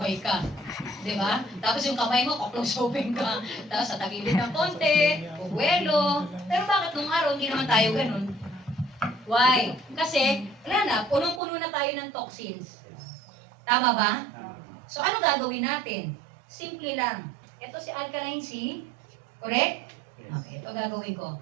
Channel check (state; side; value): drops out; left; at 11.4 s